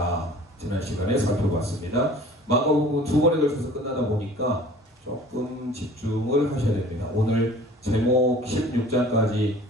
지난 시간에 살펴봤습니다. 마가복음 두 번에 걸쳐서 끝나다 보니까 조금 집중을 하셔야 됩니다. 오늘 제목 16장까지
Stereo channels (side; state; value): both; normal; correlation 0.47